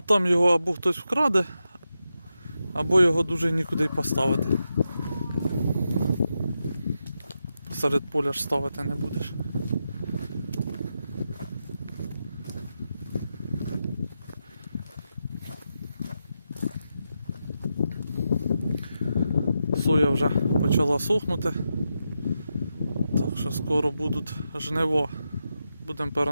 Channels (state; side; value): inverted; both; correlation -0.87